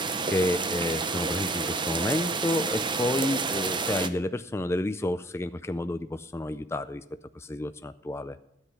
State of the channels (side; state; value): both; normal; correlation 0.56